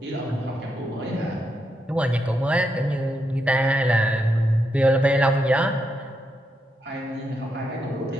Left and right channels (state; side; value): normal; both; correlation 0.82